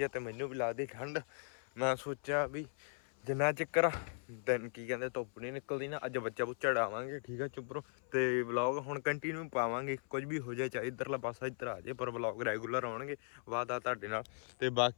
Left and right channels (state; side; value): silent; right; 52 dB below the other